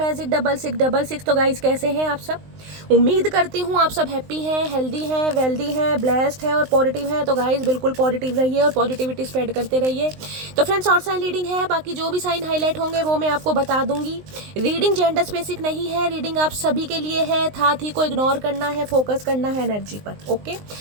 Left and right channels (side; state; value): left; late; 19 ms